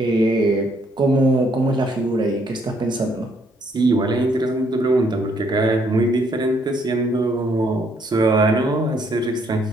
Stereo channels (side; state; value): both; normal; correlation 0.69